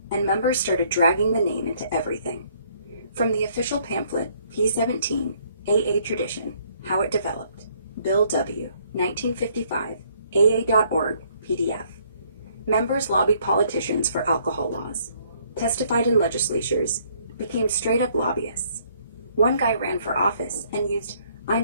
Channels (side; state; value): both; inverted; correlation -0.64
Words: and members started dragging the name into everything. From the official pamphlet, P17, AA Tradition, How It Developed, Bill W., 1955, AA.org, PDF. Members lobbied politicians for alcohol laws, testified in legislatures, became straight-up lobbyists. One guy ran for office and used